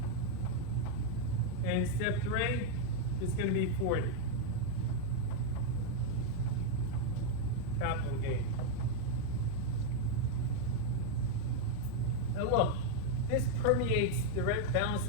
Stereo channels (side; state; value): both; different; correlation 0.00